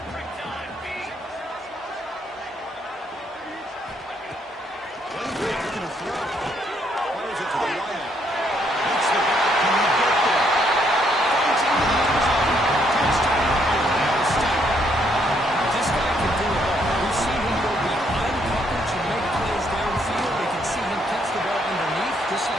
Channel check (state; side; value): normal; both; correlation 0.71